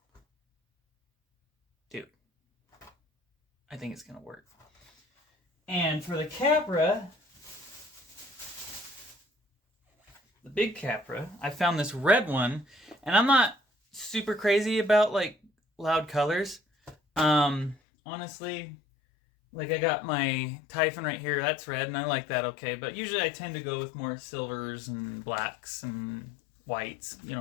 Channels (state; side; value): drops out; right; at 17.8 s